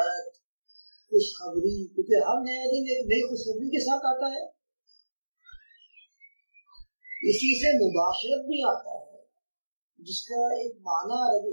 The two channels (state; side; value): inverted; both; correlation -1.00